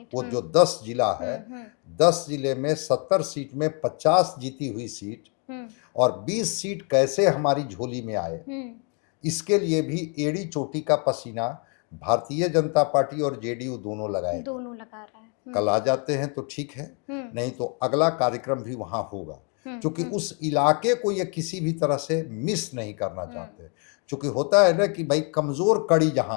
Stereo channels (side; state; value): right; quieter; 37.8 dB